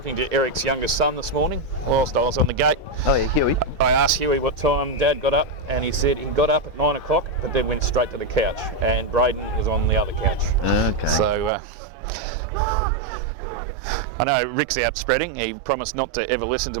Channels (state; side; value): drops out; left; at 11.5 s